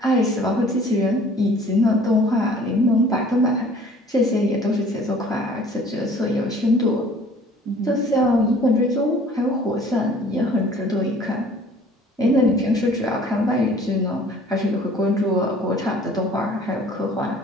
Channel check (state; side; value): normal; both; correlation 0.52